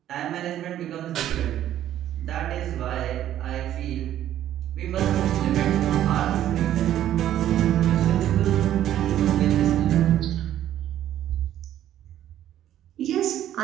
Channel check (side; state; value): left; quieter; 11.9 dB